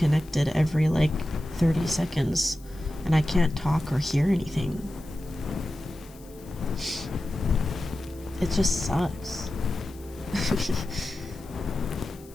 every like 30 seconds and I can't talk or hear anything. It just sucks.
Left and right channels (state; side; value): noise; left; hiss, 24 dB below the sound